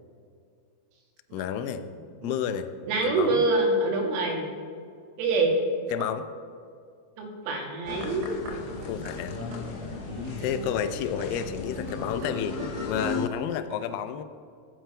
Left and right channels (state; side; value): late; left; 26 ms